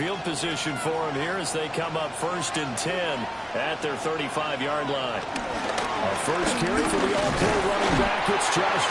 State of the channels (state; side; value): identical; both; correlation 1.00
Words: position for them here as they come up 1st and 10 at their 35-yard line. A first carry for the all-pro running back. It's